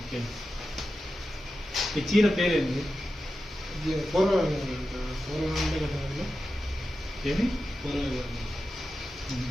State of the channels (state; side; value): normal; both; correlation 0.91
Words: ఈ చీర పేరేంది? ఏమి